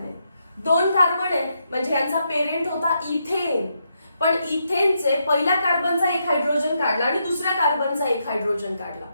2 कार्बन आहेत म्हणजे यांचा पेरेंट होता इथेन, पण इथेनचे पहिल्या कार्बनचा एक हायड्रोजन काढला आणि दुसऱ्या कार्बनचा एक हायड्रोजन काढला,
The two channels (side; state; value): both; inverted; correlation -0.80